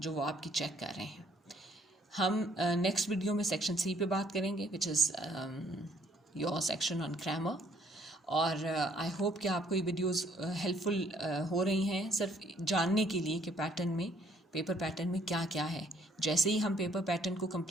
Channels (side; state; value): both; normal; correlation 0.64